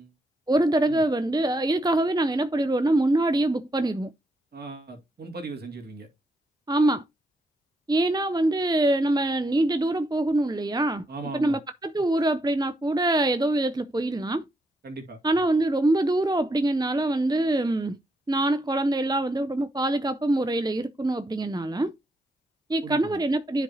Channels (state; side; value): normal; both; correlation 0.78